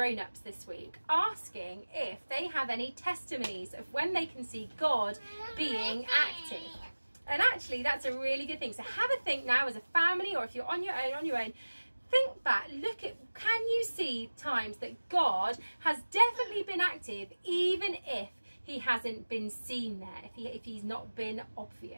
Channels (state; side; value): inverted; both; correlation -1.00